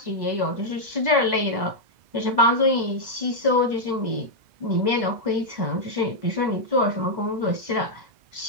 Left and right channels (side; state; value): left; late; 2.0 ms